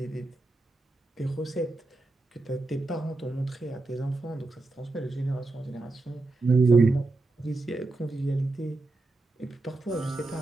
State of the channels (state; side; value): quieter; left; 3.1 dB